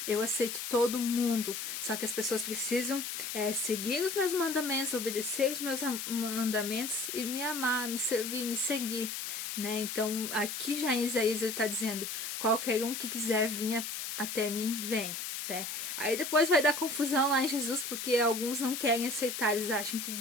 eu aceito todo mundo, só que as pessoas precisam seguir os meus mandamentos, obedecer os meus mandamentos e me amar, me servir, me seguir, né? Então, aqui já em Isaías ele está dizendo, qualquer um que quiser vir até mim, vem, né? Aí depois vai dar confusão lá em Jesus, porque alguns não querem aceitar, eles acham que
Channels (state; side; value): noise; left; hiss, 5 dB below the sound